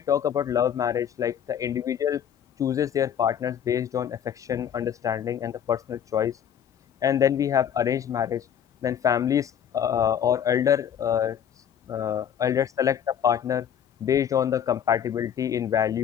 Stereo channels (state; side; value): quieter; right; 8.9 dB